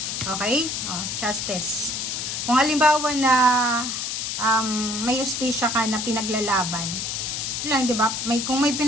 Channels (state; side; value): noise; left; hiss, 3 dB below the sound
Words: Okay? Justice. Kung halimbawa na may justisya ka na pinaglalaban, lang, di ba? Kung may